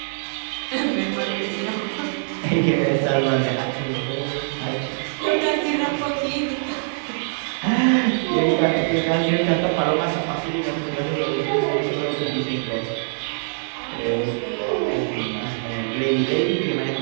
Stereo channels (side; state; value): left; silent; digital silence